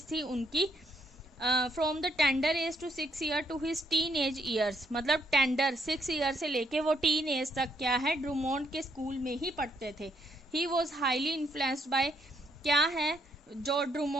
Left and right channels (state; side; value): normal; both; correlation 0.73